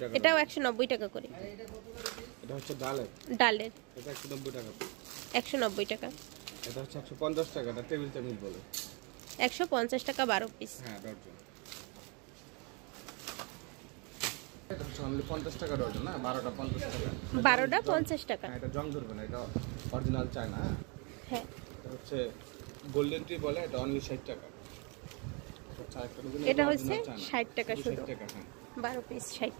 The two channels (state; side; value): quieter; left; 32.3 dB